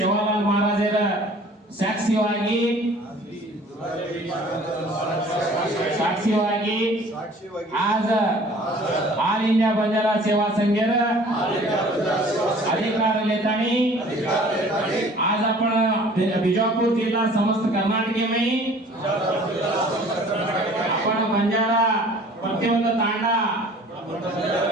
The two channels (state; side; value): normal; both; correlation 0.50